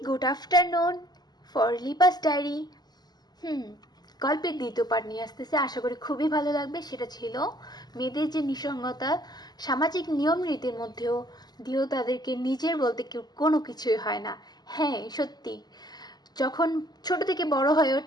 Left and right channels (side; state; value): right; late; 0.20 ms